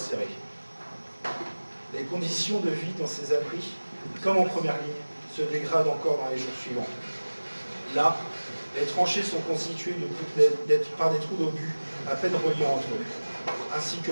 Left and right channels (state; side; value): inverted; both; correlation -1.00